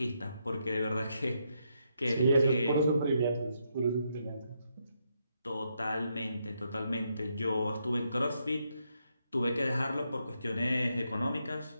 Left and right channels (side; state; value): both; inverted; correlation -0.80